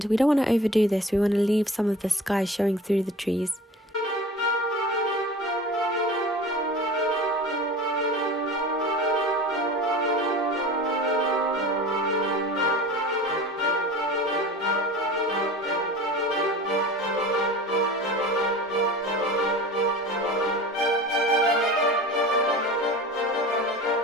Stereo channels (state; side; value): normal; both; correlation 0.37